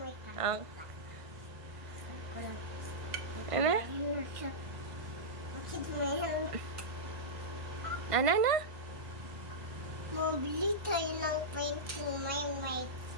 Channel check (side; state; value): left; late; 1.5 ms